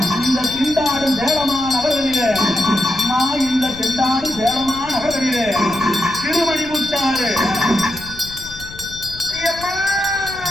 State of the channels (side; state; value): left; noise; rumble, 17 dB below the sound